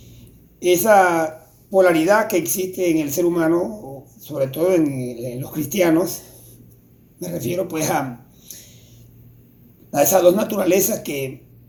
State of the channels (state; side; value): identical; both; correlation 1.00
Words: esa polaridad que existe en el ser humano, sobre todo en los cristianos. Me refiero pues a esas dos naturalezas que